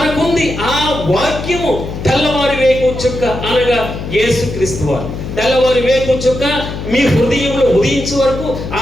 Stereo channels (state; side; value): noise; left; hum, 7 dB below the sound